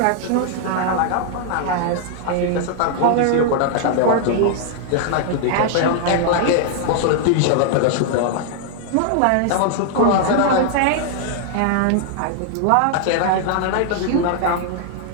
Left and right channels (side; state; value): both; different; correlation 0.00